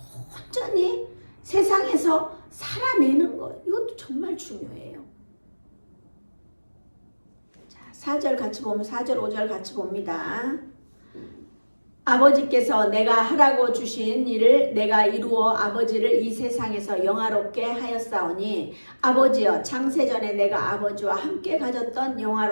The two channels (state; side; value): inverted; both; correlation -1.00